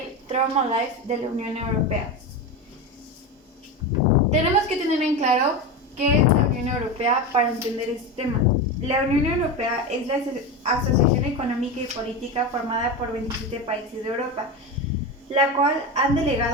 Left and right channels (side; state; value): both; normal; correlation 0.20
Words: Trauma Life de la Unión Europea. Tenemos que tener en claro qué es la Unión Europea para entender este tema. La Unión Europea es la asociación económica y política formada por 27 países de Europa, la cual han